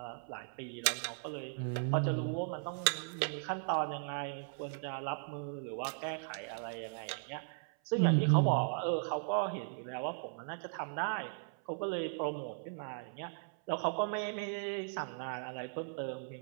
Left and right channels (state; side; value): silent; left; 53 dB below the other